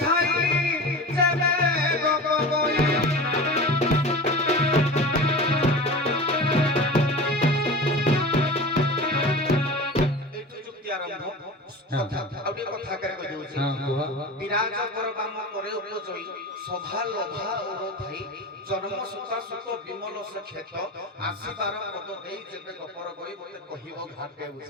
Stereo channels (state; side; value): normal; both; correlation 0.33